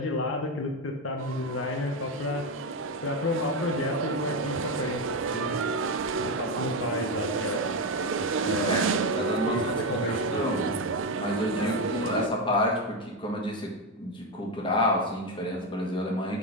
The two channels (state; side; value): normal; both; correlation 0.10